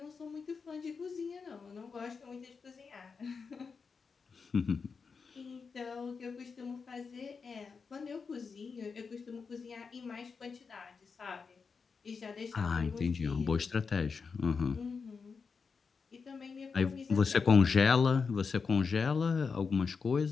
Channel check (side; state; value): right; quieter; 5.3 dB